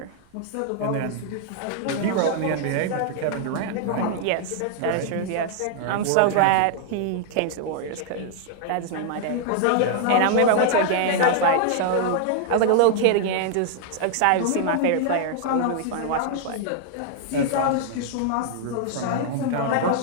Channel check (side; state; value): both; different; correlation 0.00